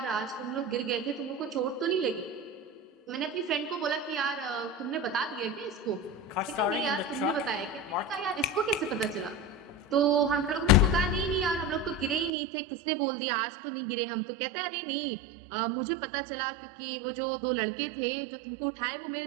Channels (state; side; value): drops out; left; at 12.3 s